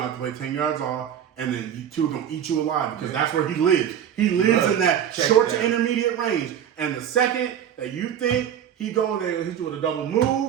have to play 10 yards off, and then you two are gonna eat you alive because that's where he lives. He lives in that short to intermediate range. And the second that you think they're gonna hit you with a double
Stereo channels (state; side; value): quieter; left; 9.5 dB